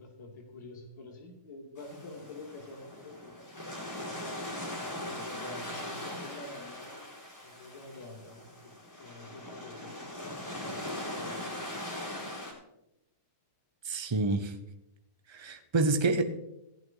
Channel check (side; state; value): left; late; 1.3 ms